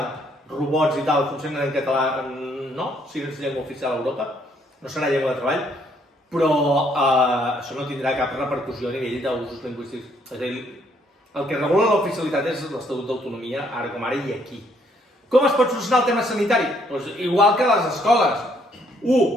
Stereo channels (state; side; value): normal; both; correlation 0.68